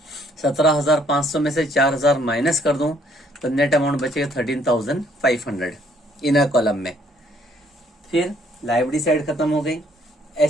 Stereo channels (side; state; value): both; normal; correlation 0.65